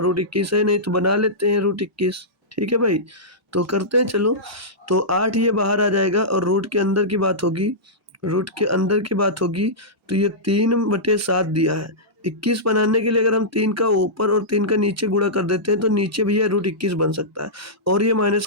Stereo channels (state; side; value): normal; both; correlation -0.14